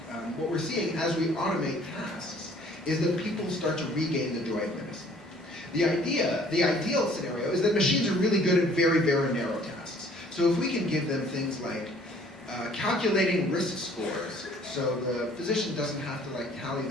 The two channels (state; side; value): normal; both; correlation 0.57